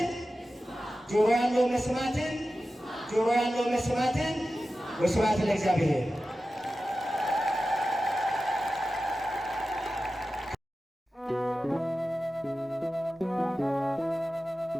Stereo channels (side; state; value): both; normal; correlation 0.94